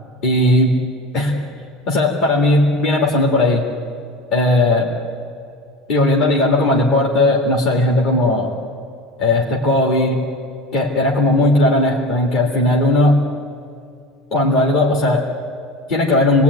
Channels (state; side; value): normal; both; correlation 0.31